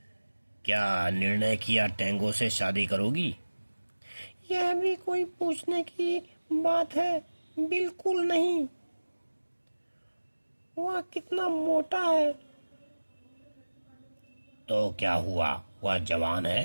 क्या निर्णय किया, टेंगो से शादी करोगी? यह भी कोई पूछने की बात है? बिल्कुल नहीं। वह कितना मोटा है। तो क्या हुआ, वह जवान है,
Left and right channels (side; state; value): both; inverted; correlation -1.00